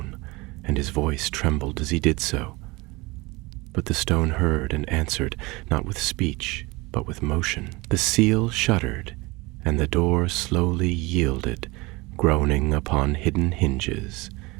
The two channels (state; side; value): quieter; left; 23.6 dB